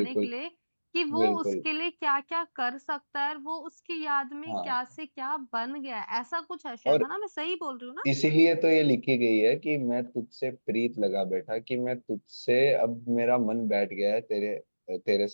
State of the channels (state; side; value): inverted; both; correlation -1.00